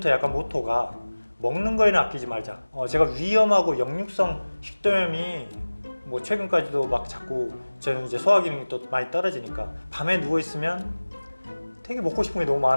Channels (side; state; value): both; inverted; correlation -1.00